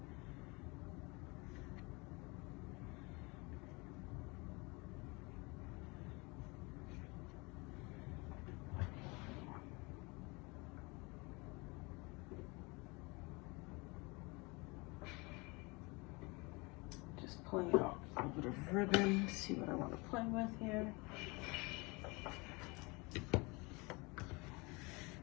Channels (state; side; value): quieter; right; 26.8 dB